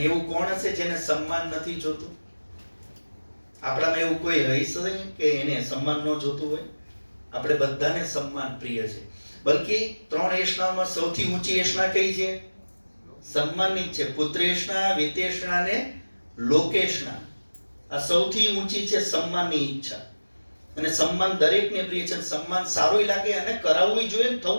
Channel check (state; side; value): inverted; both; correlation -1.00